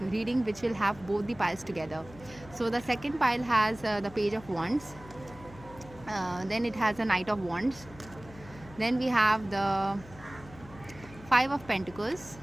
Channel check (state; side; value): noise; left; hum, 19 dB below the sound